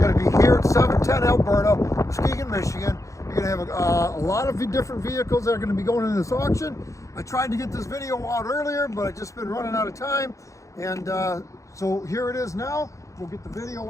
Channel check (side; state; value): right; late; 0.15 ms